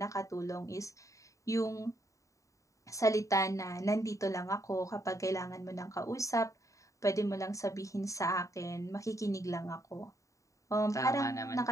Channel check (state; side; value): late; right; 0.16 ms